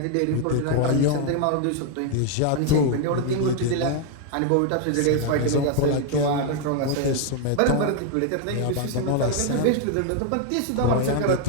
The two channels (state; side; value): different; both; correlation 0.01